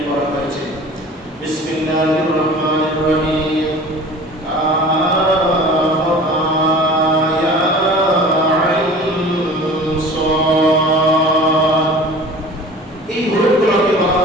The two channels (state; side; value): normal; both; correlation 0.42